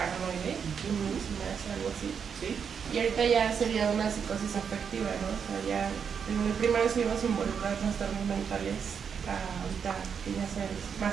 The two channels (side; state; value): left; quieter; 6.9 dB